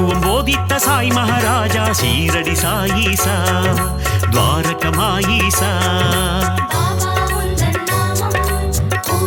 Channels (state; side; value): identical; both; correlation 1.00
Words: బోధిత సాయి మహారాజా షీరడి సాయిసా ద్వారకమాయిసా